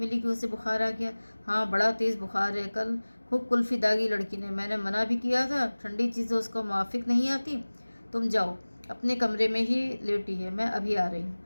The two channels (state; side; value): inverted; both; correlation -1.00